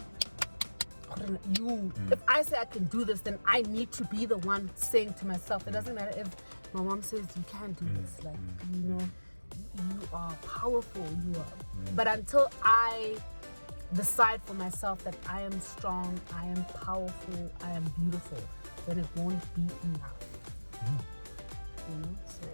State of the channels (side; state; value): both; inverted; correlation -1.00